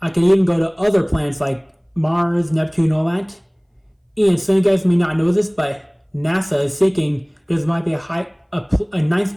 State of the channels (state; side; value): identical; both; correlation 1.00